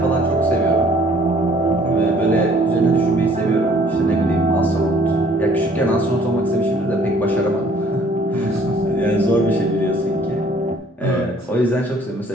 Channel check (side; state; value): both; normal; correlation 0.58